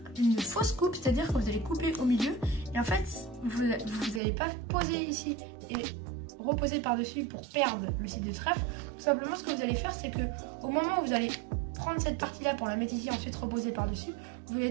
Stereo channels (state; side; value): drops out; left; at 4.2 s